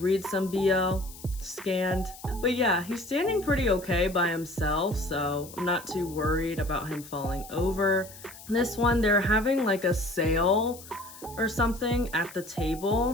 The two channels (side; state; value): left; noise; hiss, 17 dB below the sound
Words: some BL scanned. But yeah, he's standing pretty okay by himself, so I'm not too worried about him falling over. This one, they're having like a sale or something at the